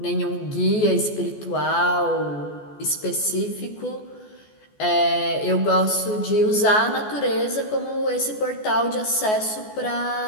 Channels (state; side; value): late; right; 14 ms